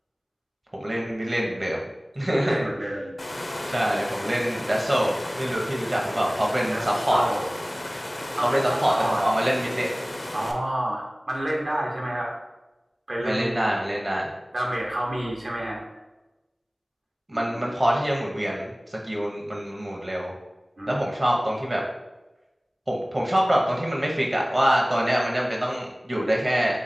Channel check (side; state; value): both; normal; correlation 0.98